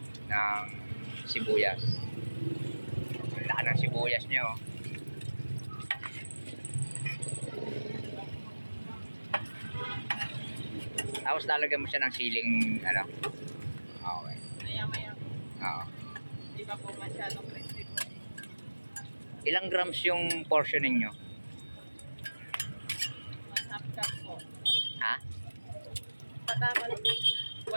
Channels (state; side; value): inverted; both; correlation -1.00